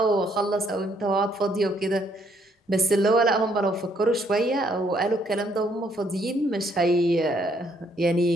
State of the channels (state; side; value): normal; both; correlation 0.69